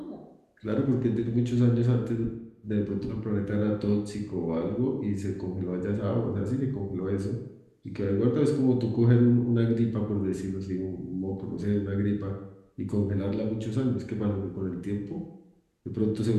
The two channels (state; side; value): identical; both; correlation 1.00